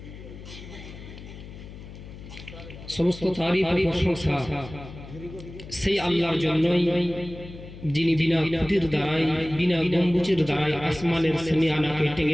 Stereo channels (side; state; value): left; noise; hum, 15 dB below the sound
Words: সমস্ত তারিফ ও প্রশংসা সেই আল্লাহর জন্যই, যিনি বিনা খুঁটির দ্বারাই, বিনা গম্বুজের দ্বারাই আসমানের সেমিয়ানাকে